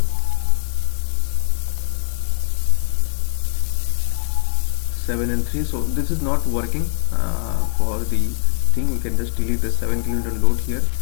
7 and 3. So this is not working for the thing. We can just delete the 7 kN load here.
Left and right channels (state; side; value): silent; right; 55 dB below the other